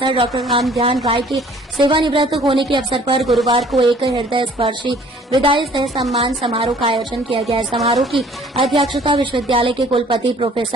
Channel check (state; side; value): normal; both; correlation 0.55